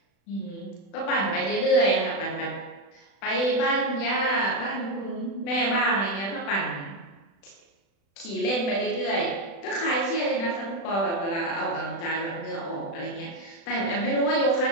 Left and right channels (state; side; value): late; right; 36 ms